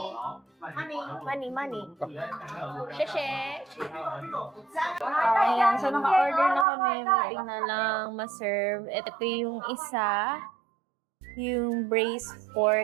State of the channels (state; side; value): drops out; left; at 6.7 s